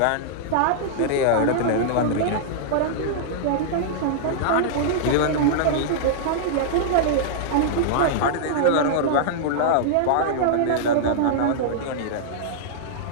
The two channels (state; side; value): different; both; correlation -0.02